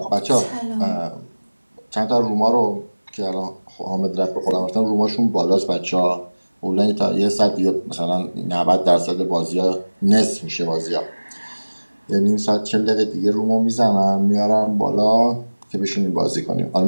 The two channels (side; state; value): both; inverted; correlation -1.00